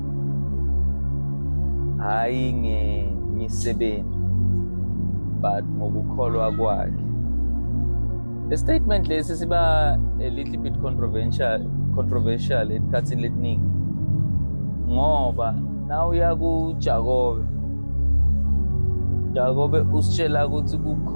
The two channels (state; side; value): inverted; both; correlation -1.00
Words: hayi ngemisebenzi but ngokukholwa kwakhe. The statement lesi siba a little bit controversial esikhathini lesiningi, ngoba na uya Jakobe usitshela ukuthi